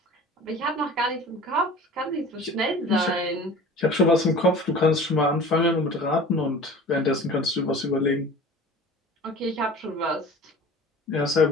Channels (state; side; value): normal; both; correlation 0.41